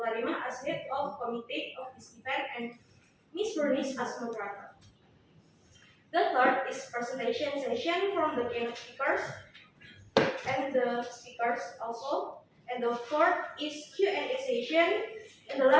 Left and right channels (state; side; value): identical; both; correlation 1.00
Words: Karimah as head of committee of this event and Ms. Bernice as moderator. The third is presentation session from the keynote speakers and the speakers also. And the fourth is Q&A session. And the